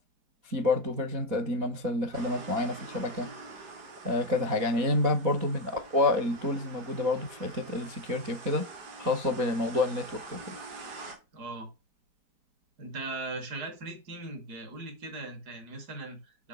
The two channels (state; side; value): late; left; 4.2 ms